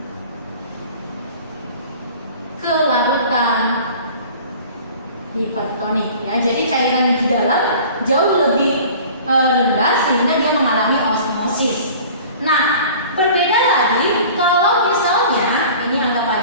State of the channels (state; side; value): inverted; both; correlation -0.44